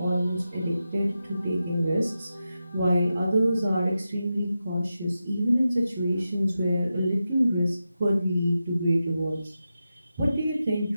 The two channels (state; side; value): inverted; both; correlation -0.90